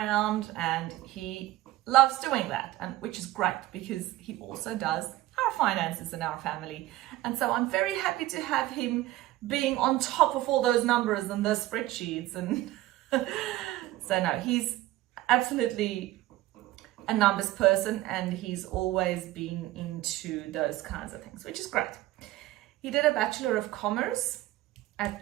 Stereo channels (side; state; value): left; quieter; 16.4 dB